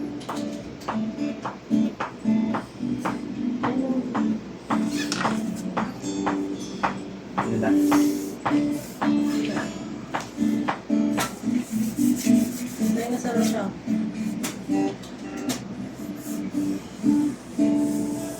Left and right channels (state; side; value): identical; both; correlation 1.00